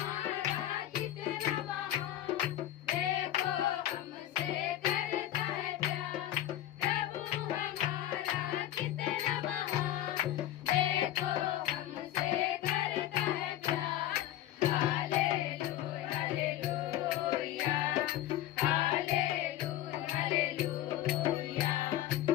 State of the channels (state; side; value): quieter; right; 13.2 dB